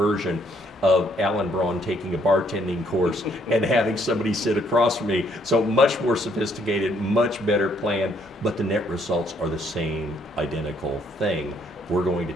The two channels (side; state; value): both; normal; correlation 0.68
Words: of Alan Brawn taking a bartending course and having somebody sit across from me. So much more sophisticated, much better plan, but the net results are the same identical thing. We're going to